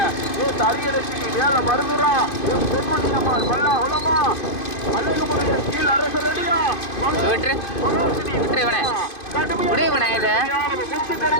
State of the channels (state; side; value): late; right; 2.5 ms